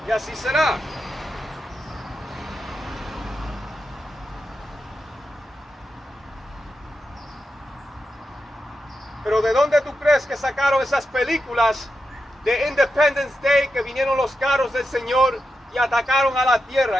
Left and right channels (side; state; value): both; normal; correlation 0.88